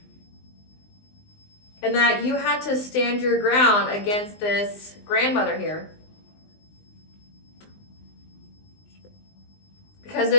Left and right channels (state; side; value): late; right; 19 ms